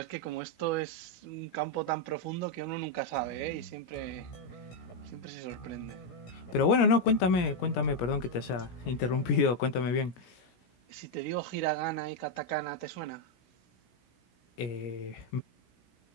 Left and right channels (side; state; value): right; late; 17 ms